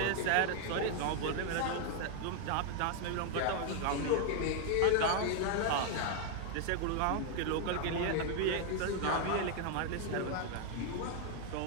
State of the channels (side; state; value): both; different; correlation 0.00